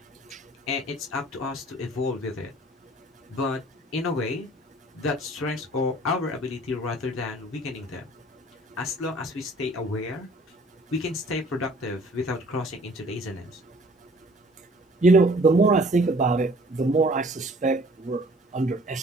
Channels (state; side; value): normal; both; correlation 0.53